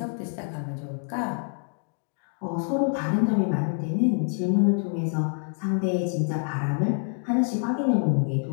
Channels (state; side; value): silent; right; 57 dB below the other